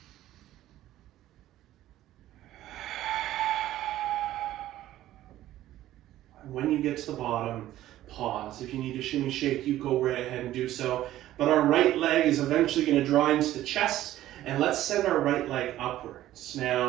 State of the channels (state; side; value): quieter; left; 13.9 dB